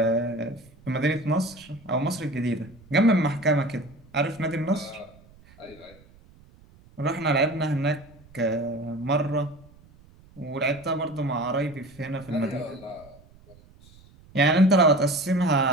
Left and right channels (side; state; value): right; noise; rumble, 25 dB below the sound